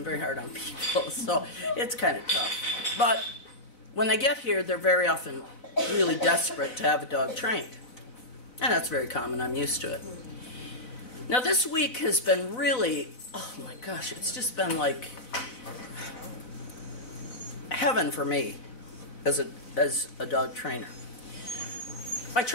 very hard on people, so it's kind of tough. But when they get here, they're very often really desperate to have a dog trained. And that's very common. I'm used to it. Now this week has been really, oh my gosh, it's just been like heaven for me as a dog trainer. By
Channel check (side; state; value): right; late; 4.0 ms